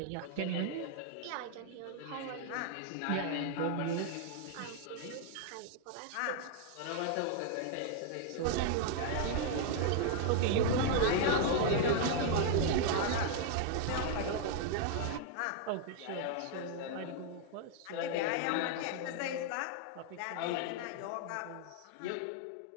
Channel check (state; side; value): different; both; correlation 0.00